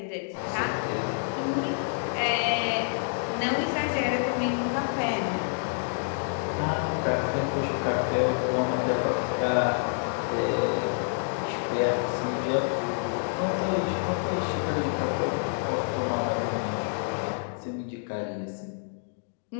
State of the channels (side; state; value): right; silent; digital silence